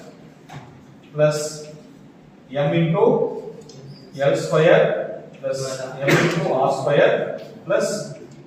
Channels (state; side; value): identical; both; correlation 1.00